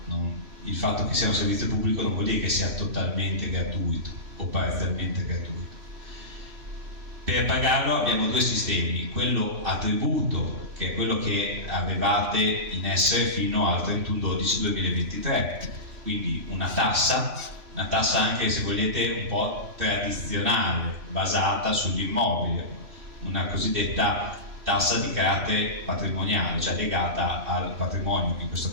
Il fatto che sia un servizio pubblico non vuol dire che sia totalmente gratuito o parzialmente gratuito. Per pagarlo abbiamo due sistemi: quello a tributo, che è quello che avevate in essere fino al 31/12/2023, quindi una tassa anche, se volete, un po' tradizionale, basata sull'immobile, una cosiddetta tassa di carattere patrimoniale, cioè legata al patrimonio, in questo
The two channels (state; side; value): late; left; 3.1 ms